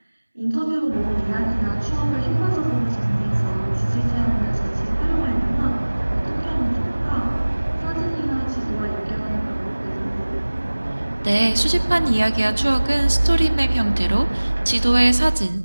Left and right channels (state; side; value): inverted; both; correlation -1.00